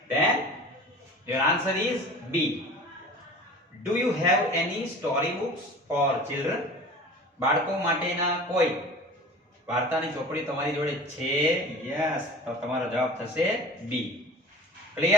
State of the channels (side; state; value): both; normal; correlation 0.40